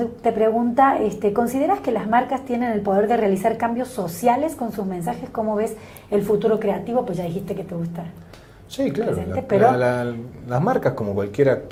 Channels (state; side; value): identical; both; correlation 1.00